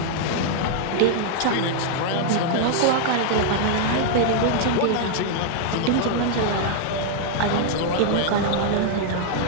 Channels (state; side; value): different; both; correlation 0.00